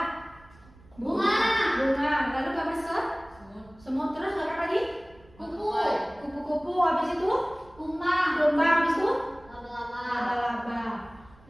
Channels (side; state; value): right; noise; rumble, 26 dB below the sound